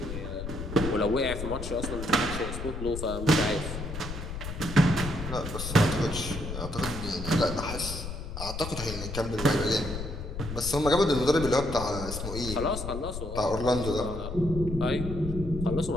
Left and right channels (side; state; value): left; noise; rumble, 7 dB below the sound